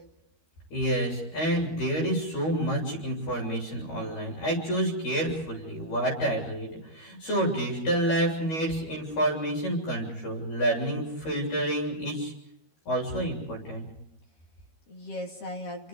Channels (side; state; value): right; late; 13 ms